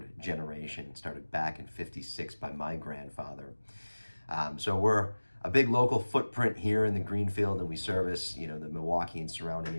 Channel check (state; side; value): inverted; both; correlation -1.00